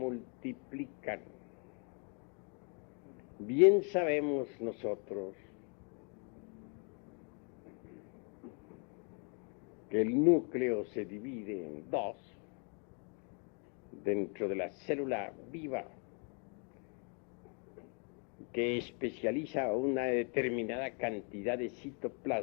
Bien sabemos nosotros que el núcleo se divide en dos dentro de la célula viva, que especializa una determinada cantidad de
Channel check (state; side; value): quieter; right; 38.1 dB